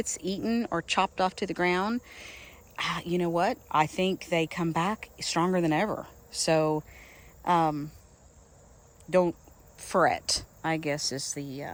eaten or chopped off to the ground, you know what? I think they come back stronger than ever. So don't fret, I guess, is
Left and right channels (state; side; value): identical; both; correlation 1.00